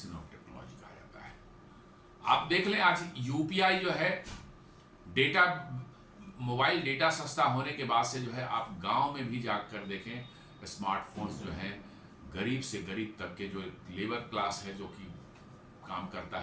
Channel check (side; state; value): both; identical; correlation 1.00